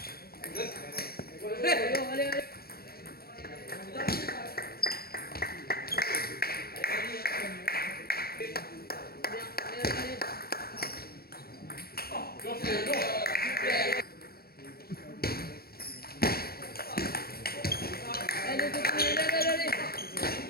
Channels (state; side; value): late; right; 0.44 ms